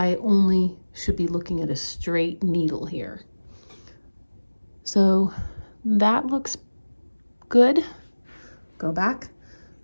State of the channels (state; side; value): inverted; both; correlation -1.00